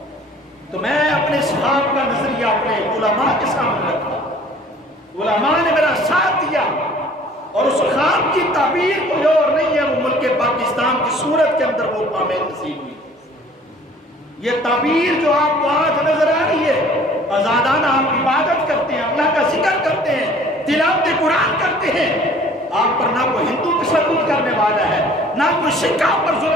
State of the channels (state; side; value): normal; both; correlation 0.51